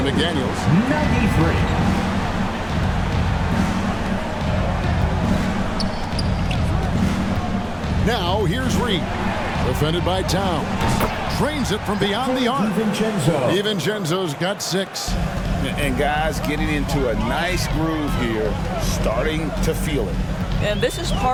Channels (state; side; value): identical; both; correlation 1.00